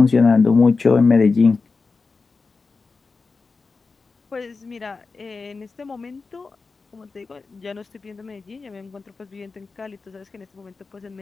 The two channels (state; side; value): quieter; right; 4.3 dB